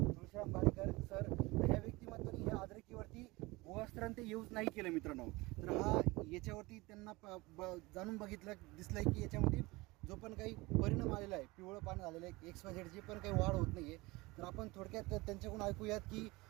भाडेकर सर. ह्या व्यक्तिमत्वाने ह्या अद्रकीवरती भुवास्त्रांत यूज नाही केलं मित्रांनो. तर हा याच्यावरती त्यांना जाणून बघितलं, दिसलंय की याच्यामध्ये जो पण काही परिणाम आलेला आहे, पिवळं पान झालेलं आहे, XYZ जे पण काही वाढ होत नाही आहे. तर आपण थोडक्यात त्यांच्याकडून ऐकूयात की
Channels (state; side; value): quieter; left; 22.4 dB